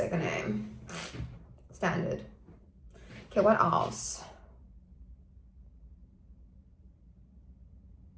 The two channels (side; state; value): both; identical; correlation 1.00